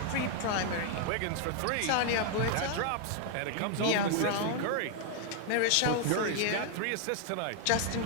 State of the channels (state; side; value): different; both; correlation 0.00